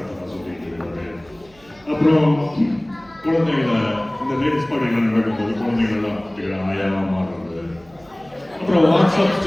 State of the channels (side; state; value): right; noise; hum, 28 dB below the sound